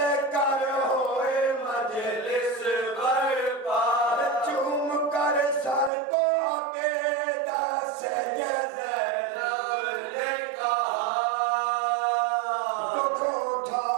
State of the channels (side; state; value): left; drops out; at 5.9 s